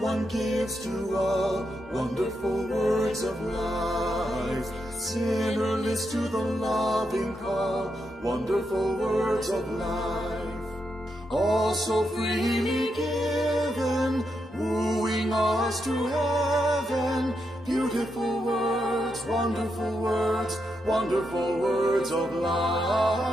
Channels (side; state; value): both; normal; correlation 0.83